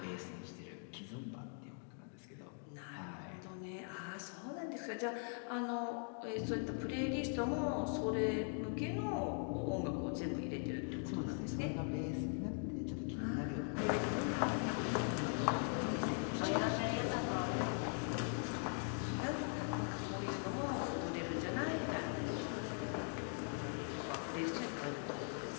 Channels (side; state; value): right; silent; 50 dB below the other